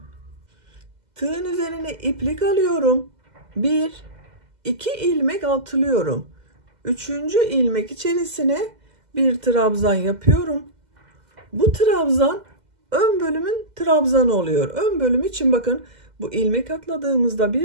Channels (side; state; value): left; late; 2.0 ms